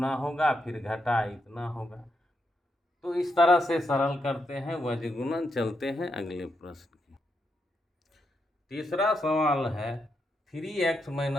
होगा फिर घटा इतना होगा। तो इस तरह से सरल करते हैं वज्र गुणन। चलते हैं अगले प्रश्न की। तीसरा सवाल है 3x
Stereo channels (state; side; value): normal; both; correlation 0.82